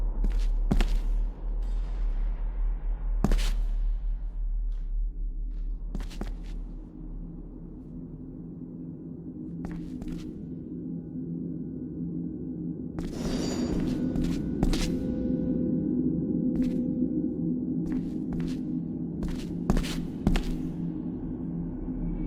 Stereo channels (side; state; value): both; identical; correlation 1.00